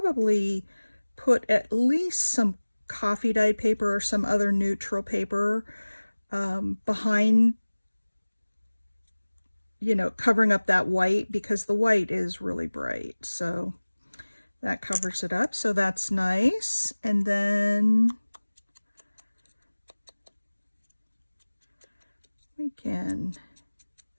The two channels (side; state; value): both; inverted; correlation -1.00